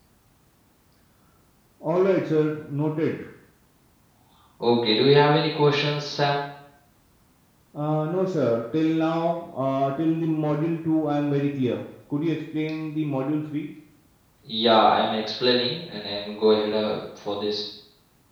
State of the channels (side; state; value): both; identical; correlation 1.00